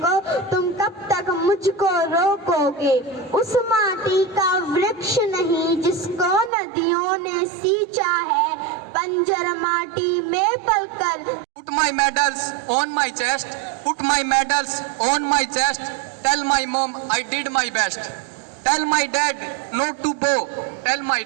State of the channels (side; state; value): left; drops out; at 6.5 s